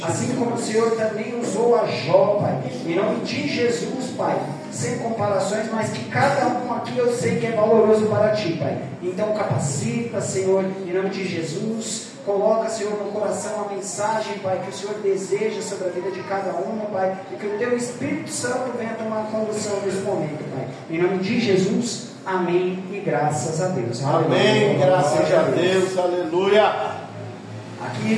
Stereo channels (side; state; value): both; identical; correlation 1.00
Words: assim como o Senhor também usou a Jó, Pai, em nome de Jesus, Pai, sem comparações, mas que cada um aqui eu sei que é valoroso para Ti, Pai. Então capacita, Senhor, em nome de Jesus. Coloca, Senhor, no coração a mensagem, Pai, que o Senhor deseja sobre a vida de cada um, Pai, e que o Teu Espírito Santo venha tomar condução nesse momento, Pai. Em nome de Jesus, amém e graças a Deus. Amém, Aleluia. graças a Deus, aleluia.